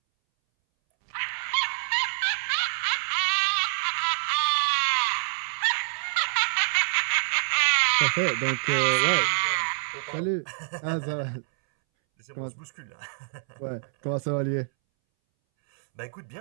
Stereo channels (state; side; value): silent; left; 60 dB below the other